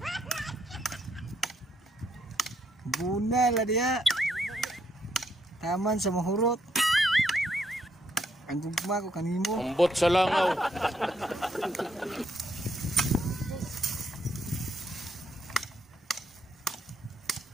Bunal dia. Taman sa mahurot. Ang gugma ko kanimo. Ambot sa langaw.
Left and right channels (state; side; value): normal; both; correlation 0.75